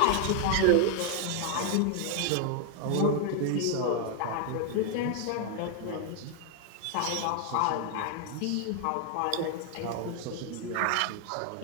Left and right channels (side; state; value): both; different; correlation 0.00